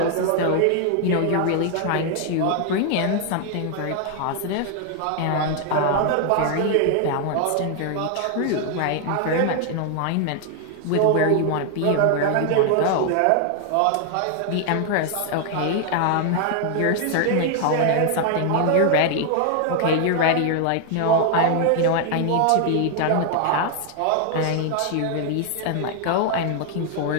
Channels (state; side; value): different; both; correlation 0.00